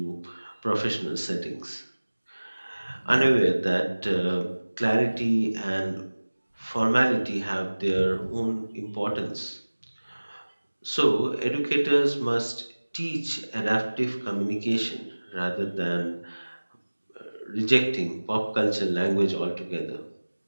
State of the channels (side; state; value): both; inverted; correlation -1.00